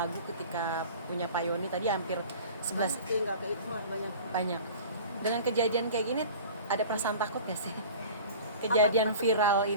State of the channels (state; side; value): inverted; both; correlation -0.41